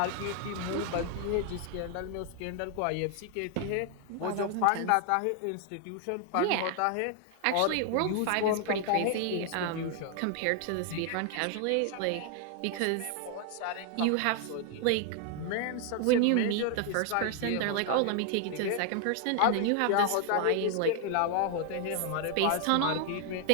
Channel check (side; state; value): both; different; correlation 0.00